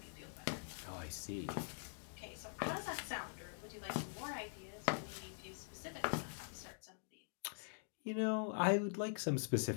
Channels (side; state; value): right; silent; digital silence